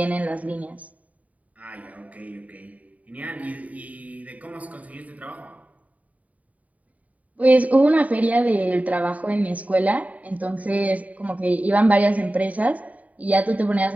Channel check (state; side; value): late; left; 0.071 ms